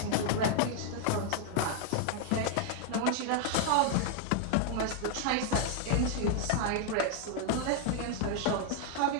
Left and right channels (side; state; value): both; different; correlation 0.00